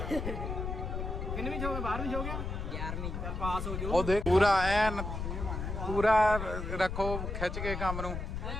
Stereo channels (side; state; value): left; noise; rumble, 4 dB below the sound